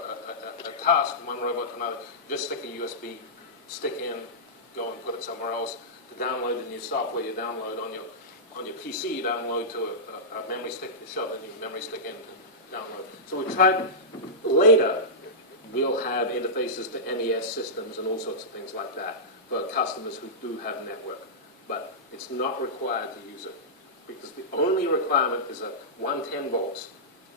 task from one robot to another, just stick a USB stick in, go and put it somewhere else. To download the new software, you download on your PC, you download to a memory stick, you shove the new memory stick in to download. So we tried later. We'll have interfaces to MES systems and all sorts of things like that for customers who do have a network. But it's not required to use it because the only requirement is a 110 volts,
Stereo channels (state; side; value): normal; both; correlation -0.13